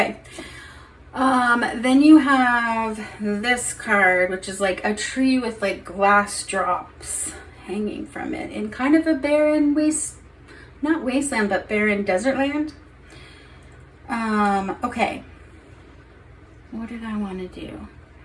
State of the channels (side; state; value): both; identical; correlation 1.00